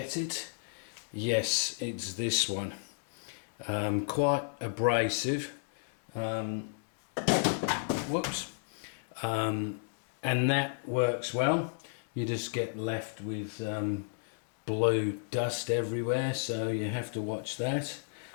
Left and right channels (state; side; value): silent; right; digital silence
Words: it? Yes, it's this one. Quite abrasive. Whoops. And that works well. You just get left with blue dust everywhere, so you have to watch that.